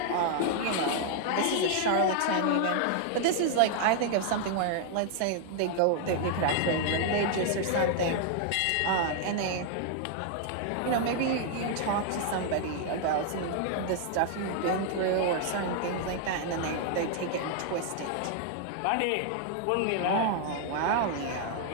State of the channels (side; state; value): both; different; correlation 0.00